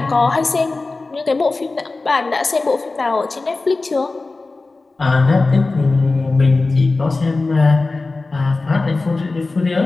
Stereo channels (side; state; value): right; quieter; 3.5 dB